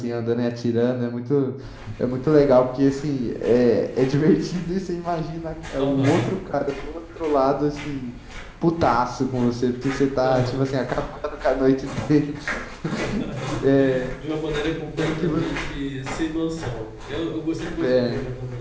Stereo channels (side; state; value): both; identical; correlation 1.00